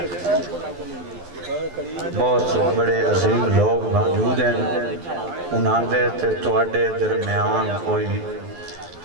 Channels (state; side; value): late; left; 11 ms